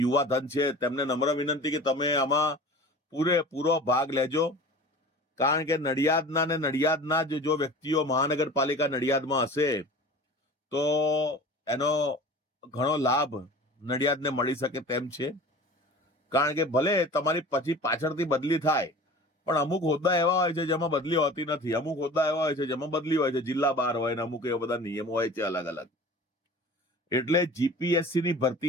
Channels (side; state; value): both; normal; correlation 0.40